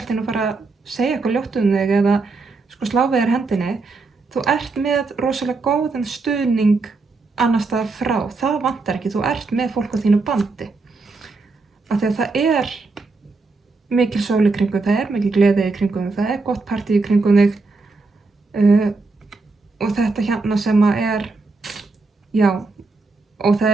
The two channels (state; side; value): quieter; left; 3.8 dB